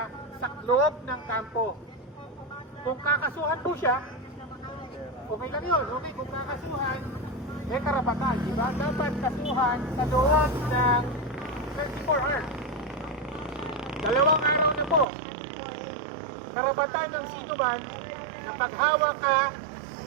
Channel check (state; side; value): drops out; left; at 15.1 s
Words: sa loob ng kampo. Kung kakasuhan po siya, okay lang yun. Okay, kung kakasuhan, may karapatan, di ba? Dapat kasuhan sa loob ng 24 hours. 2 araw na po. Karapatan ng sinuman na paghawak ka